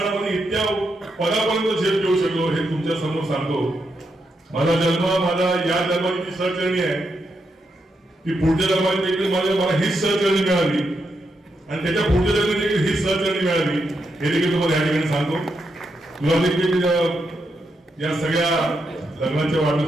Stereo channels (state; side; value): normal; both; correlation 0.83